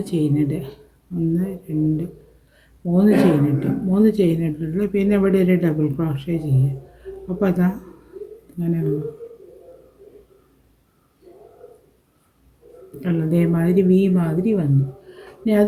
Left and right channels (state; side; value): identical; both; correlation 1.00